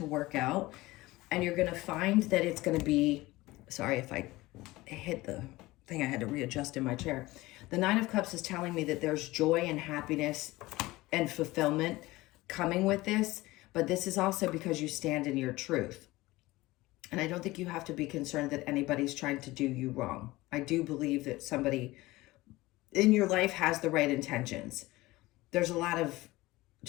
work out, and you're going to find that it's going to be, sorry if I hit the thing, I had to readjust in my chair. The Nine of Cups is telling me that there's joy and happiness and fulfillment coming with this, but this is also because you stand in your truth. And I don't think you have to be concerned that anybody's trying to do you wrong. I do believe that somebody in your life has the right intentions. There's a lot of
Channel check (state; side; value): quieter; right; 19.4 dB